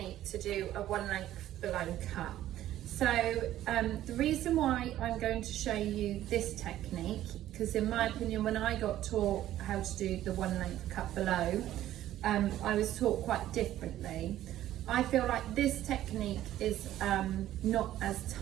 to do a one length below cut. So the reason why I'm going to show you this technique, because in my opinion when I got taught how to do the one length cut below, I was taught quite differently. I feel like this technique is not as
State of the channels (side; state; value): left; quieter; 13.2 dB